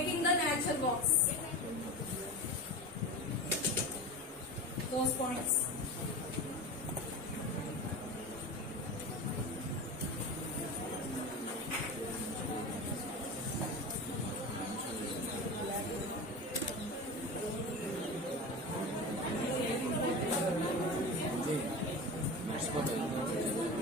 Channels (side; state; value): both; normal; correlation 0.28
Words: the nature walks. Those points.